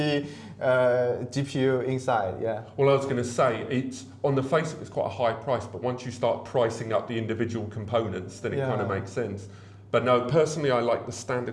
GPU inside, yeah. Well, I was going to say, it's on the face of it's quite a high price, but once you start pricing up the individual components, then it kind of makes sense. But no, personally, I like the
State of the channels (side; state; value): both; identical; correlation 1.00